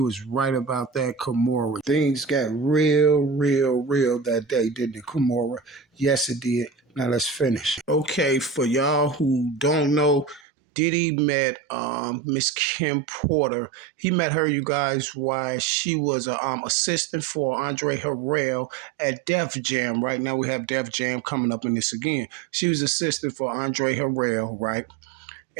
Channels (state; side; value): drops out; left; at 10.4 s